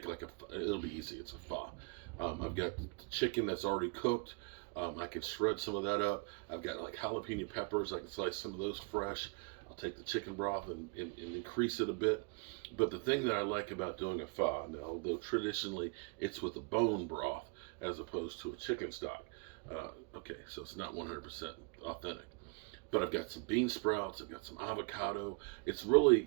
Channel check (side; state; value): left; quieter; 31.3 dB